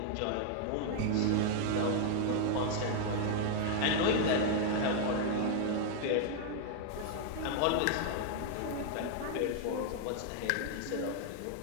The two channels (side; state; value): both; different; correlation 0.00